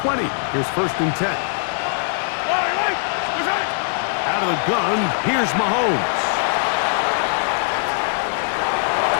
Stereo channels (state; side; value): silent; right; digital silence